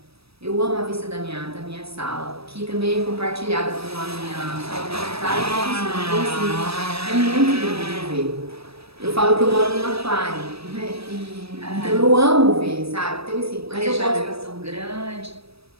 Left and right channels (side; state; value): left; late; 0.78 ms